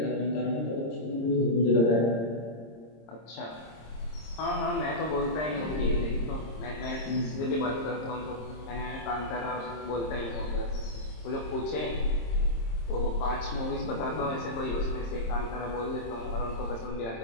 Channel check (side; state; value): right; late; 26 ms